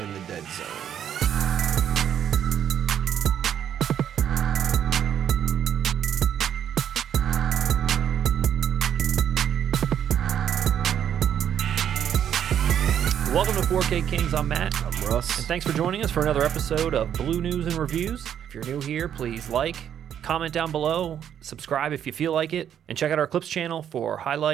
The Dead Zone. Welcome to 4K Kings. I'm Matt. I'm Russ. And thanks for joining us for another episode of Blue News and Reviews. If you're new here, please like, comment down below, subscribe if you feel like it, and check out our Clips channel for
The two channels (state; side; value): quieter; left; 9.5 dB